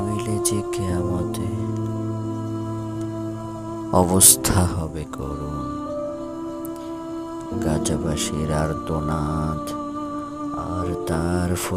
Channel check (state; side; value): identical; both; correlation 1.00